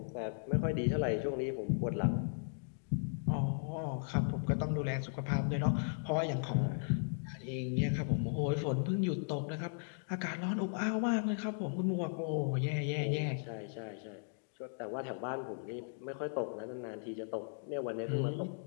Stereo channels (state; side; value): silent; right; digital silence